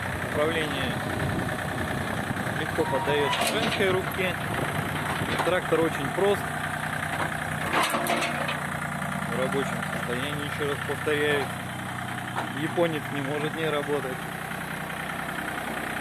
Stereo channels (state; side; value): identical; both; correlation 1.00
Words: Управление легко поддается женской руке. Трактор очень прост. В рабочем состоянии, еще раз повторяю. Японец не может не работать.